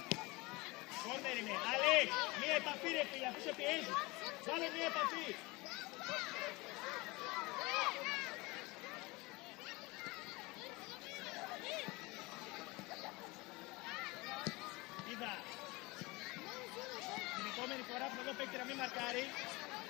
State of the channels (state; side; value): quieter; right; 23.8 dB